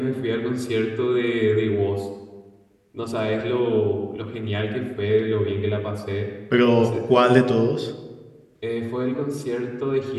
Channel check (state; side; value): identical; both; correlation 1.00